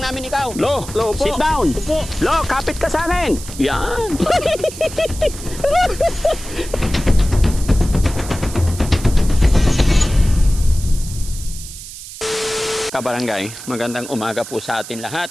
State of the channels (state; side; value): noise; right; hiss, 13 dB below the sound